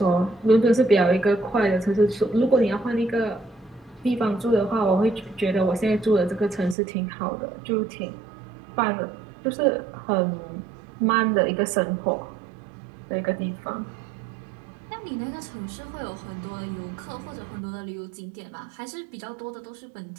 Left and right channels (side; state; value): left; drops out; at 6.8 s